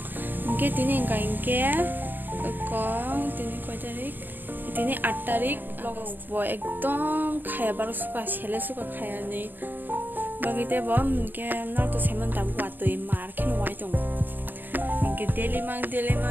ke tini kain ke ko tini 8 tarik bo ekdom khaya bar suka chele suka khaya ni bagite bom ke na to seman tam wa to mar khen wai tong ke daily mang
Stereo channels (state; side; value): late; left; 0.090 ms